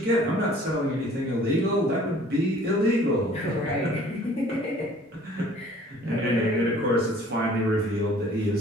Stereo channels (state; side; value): normal; both; correlation 0.52